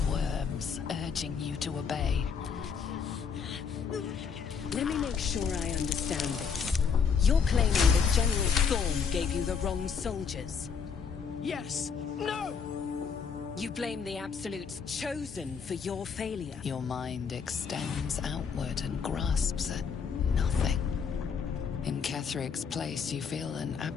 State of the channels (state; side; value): quieter; right; 6.2 dB